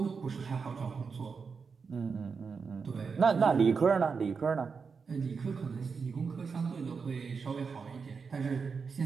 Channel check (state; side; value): quieter; left; 5.4 dB